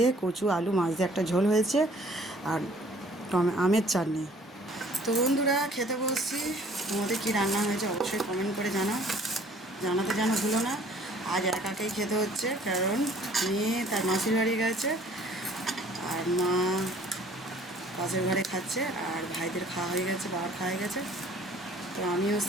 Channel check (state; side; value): normal; both; correlation 0.55